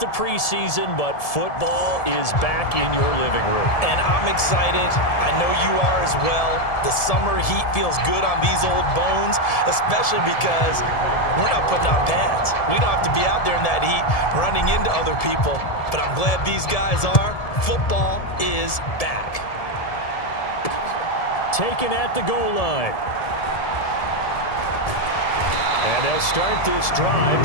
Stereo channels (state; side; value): late; right; 1.7 ms